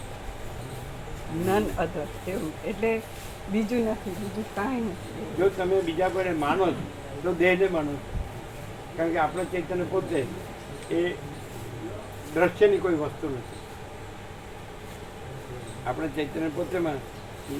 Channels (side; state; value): both; identical; correlation 1.00